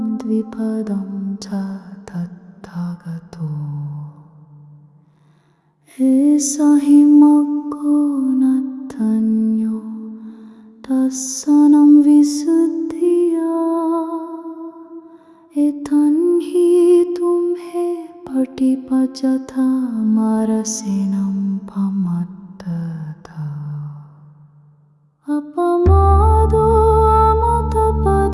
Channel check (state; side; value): identical; both; correlation 1.00